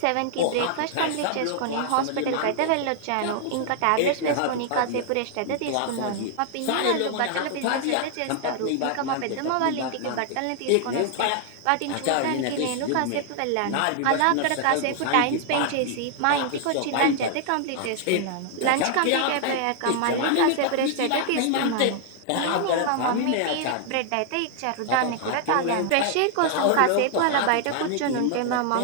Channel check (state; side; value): different; both; correlation 0.00